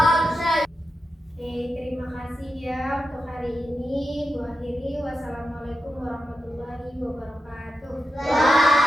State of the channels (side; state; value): both; normal; correlation 0.89